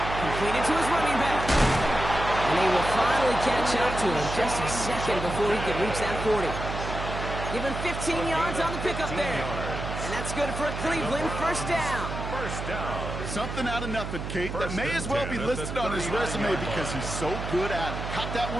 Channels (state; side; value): noise; right; hum, 6 dB below the sound